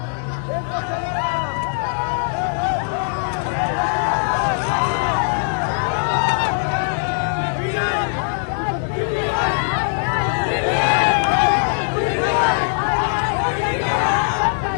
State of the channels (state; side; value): silent; right; digital silence